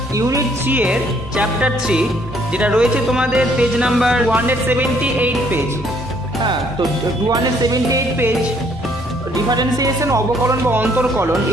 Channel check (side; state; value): both; normal; correlation 0.65